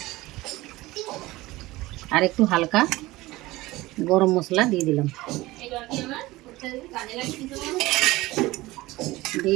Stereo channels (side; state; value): left; quieter; 19.2 dB